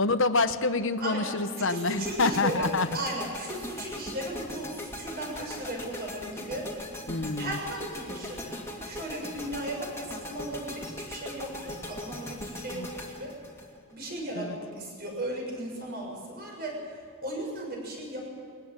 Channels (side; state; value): both; normal; correlation -0.07